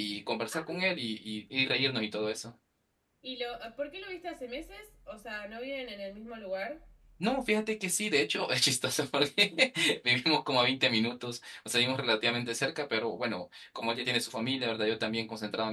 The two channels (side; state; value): both; identical; correlation 1.00